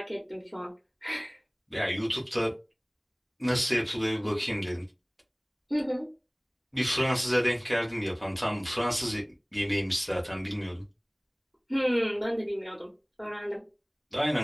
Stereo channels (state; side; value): identical; both; correlation 1.00